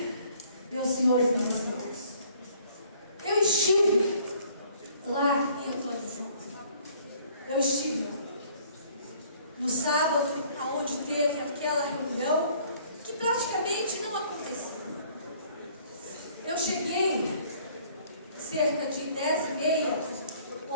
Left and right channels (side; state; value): both; inverted; correlation -0.58